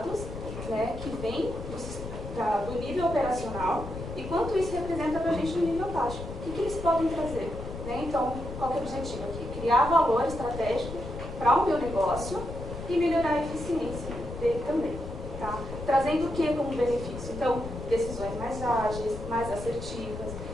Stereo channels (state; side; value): noise; left; rumble, 9 dB below the sound